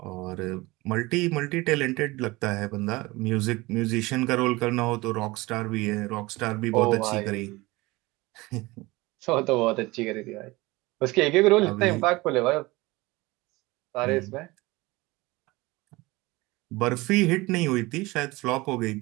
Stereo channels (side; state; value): left; quieter; 21.8 dB